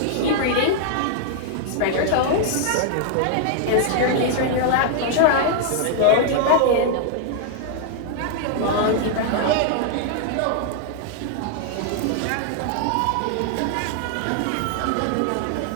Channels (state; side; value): different; both; correlation -0.01